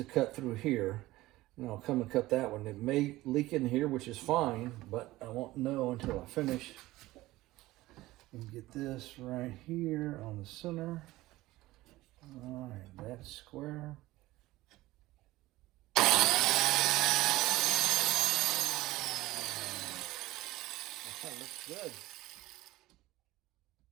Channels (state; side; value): quieter; left; 17.8 dB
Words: cut through here. And I'll come and cut that one. It may leak in here, which is fine, but I won't know until I finish. And get this right here on the center. All right, that's square. That looks good.